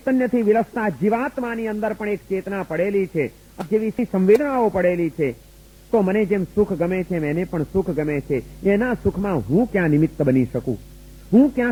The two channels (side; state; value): both; identical; correlation 1.00